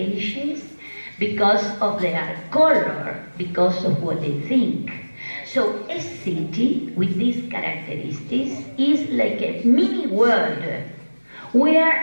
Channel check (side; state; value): both; inverted; correlation -1.00